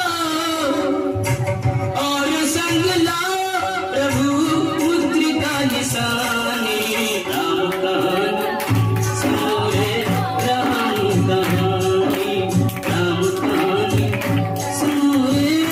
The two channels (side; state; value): both; identical; correlation 1.00